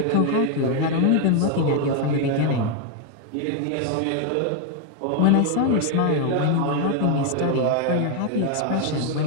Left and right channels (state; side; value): different; both; correlation 0.01